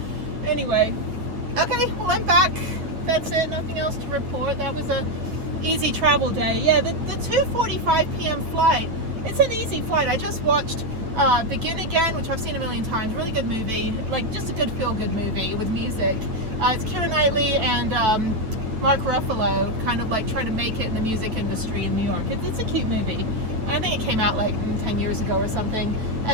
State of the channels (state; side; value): late; left; 8.9 ms